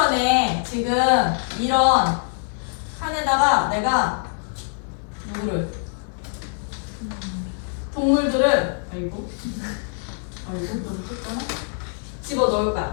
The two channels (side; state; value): right; silent; 63 dB below the other